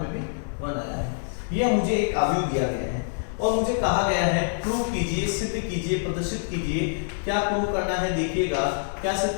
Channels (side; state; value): right; silent; digital silence